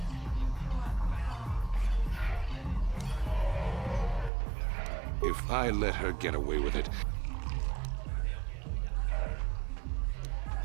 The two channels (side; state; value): left; drops out; at 4.3 s